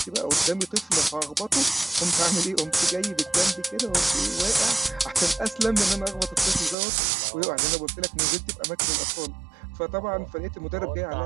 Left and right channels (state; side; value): drops out; left; at 6.8 s